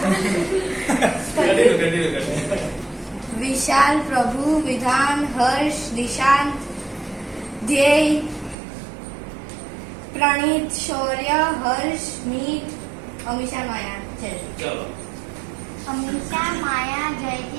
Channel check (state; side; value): drops out; left; at 8.6 s